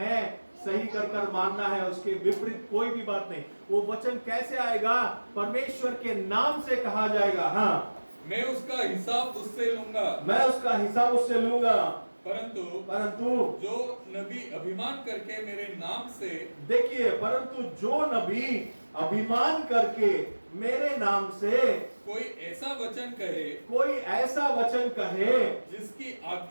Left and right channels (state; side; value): inverted; both; correlation -1.00